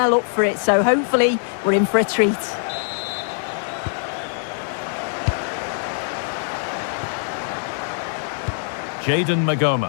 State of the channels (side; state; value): right; silent; 64 dB below the other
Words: up for it, so hopefully we're in for a treat. Jayden Magoma.